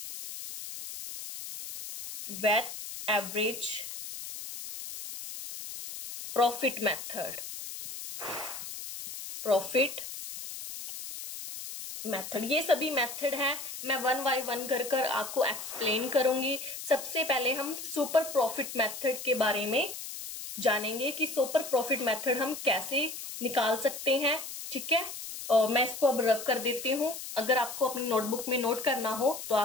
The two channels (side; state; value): left; noise; hiss, 9 dB below the sound